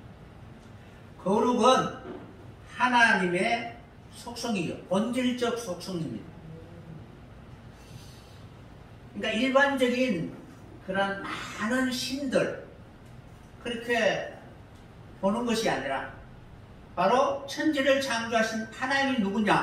거룩은 하나님의 속성이요, 본질적 속성입니다. 그러니까 일반적인 그런 많은 신들 그렇게 보는 것이 아니라 바로 천지를 창조하신 하나님이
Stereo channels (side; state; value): both; identical; correlation 1.00